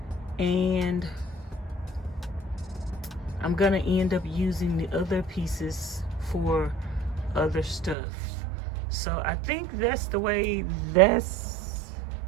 And I'm gonna end up using the other pieces for other stuff. So I think that's the way that's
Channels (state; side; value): drops out; left; at 8.0 s